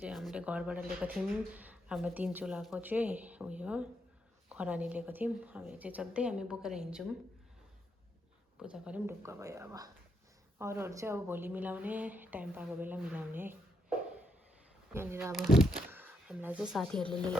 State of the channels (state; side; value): normal; both; correlation 0.79